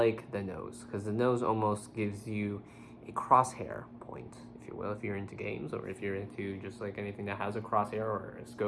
the nose, because the nose almost gives you a crosshair point, if you will, if you're into games, or if you're into just like anything that has a crosshair or a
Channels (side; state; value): both; identical; correlation 1.00